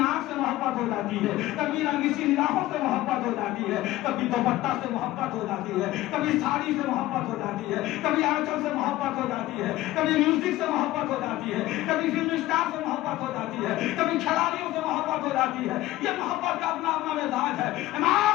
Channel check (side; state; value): right; quieter; 16.3 dB